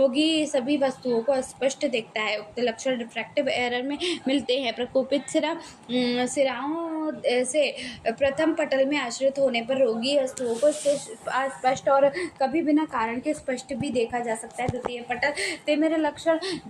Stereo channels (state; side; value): identical; both; correlation 1.00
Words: सभी वस्तुओं को स्पष्ट देखता है। उक्त लक्षण रिफ्रैक्टिव एरर में मिलते हैं। प्रकोपित सिराओं से प्रथम पटल में आश्रित होने पर रोगी वस्तुओं को स्पष्ट और कभी बिना कारण के स्पष्ट भी देखा जा सकता है। द्वितीय पटल तिमिर लक्षण